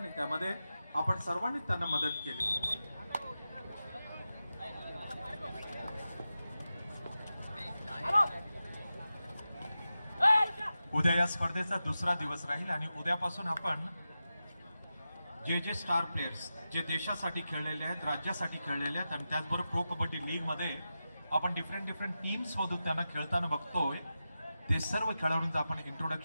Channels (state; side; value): inverted; both; correlation -0.92